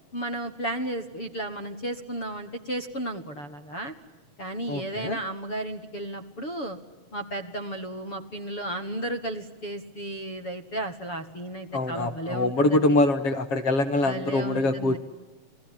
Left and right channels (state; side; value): late; right; 7.0 ms